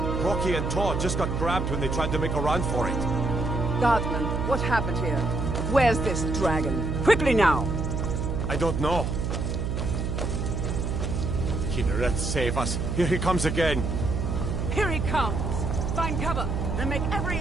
Rocky and Todd just got grabbed when they tried to make a run for it. Guardsman, what happened here? Where's this dragon? Quickly now! I don't know. Kinneret, save us. Here he comes again. Here he comes! Find cover and make every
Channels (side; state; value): right; noise; hum, 1 dB below the sound